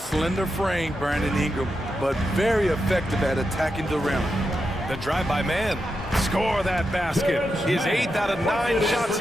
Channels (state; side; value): normal; both; correlation 0.87